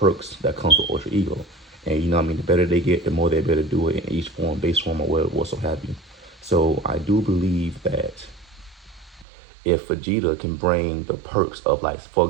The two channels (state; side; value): drops out; left; at 9.2 s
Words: that comes with Ultra Ego. And you know what I mean, the better they get, the more they're able to do it in each form, base form, or what so have you. So I do believe that if Vegeta can bring the perks of, like, for